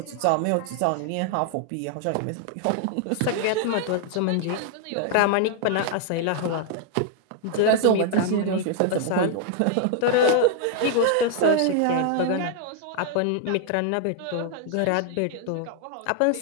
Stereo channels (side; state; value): both; different; correlation 0.00